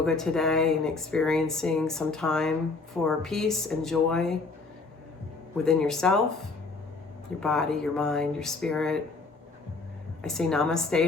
today and experiencing some time for peace and joy within yourself, your body, your mind, your spirit. I say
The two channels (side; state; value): right; quieter; 3.9 dB